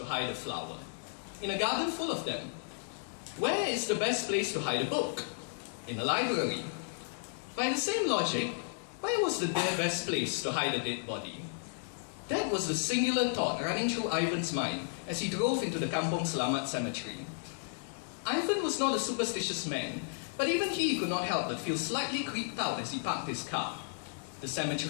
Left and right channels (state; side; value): silent; right; digital silence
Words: hide a flower. In a garden full of them. Where is the best place to hide a book? In a library. By the same logic, where was the best place to hide a dead body? That was the singular thought running through Ivan's mind as he drove into the Kampong Selamat cemetery. Ivan was not a superstitious man, but even he could not help but feel slightly creeped out as he parked his car. The